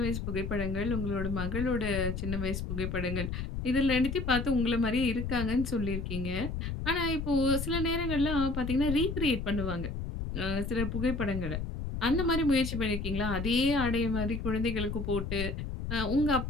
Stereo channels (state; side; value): noise; left; rumble, 4 dB below the sound